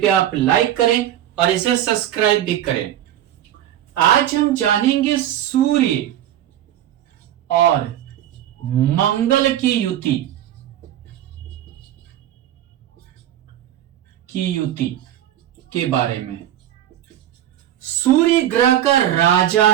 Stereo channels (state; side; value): quieter; left; 11.8 dB